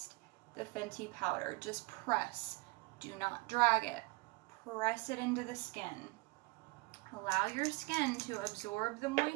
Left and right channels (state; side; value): quieter; left; 24.2 dB